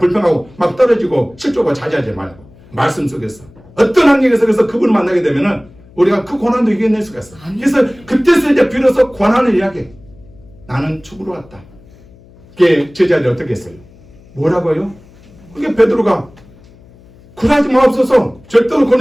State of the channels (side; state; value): left; noise; hum, 25 dB below the sound